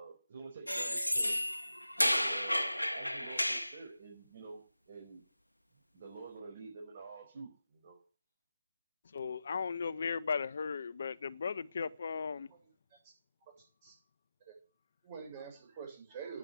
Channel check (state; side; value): inverted; both; correlation -0.94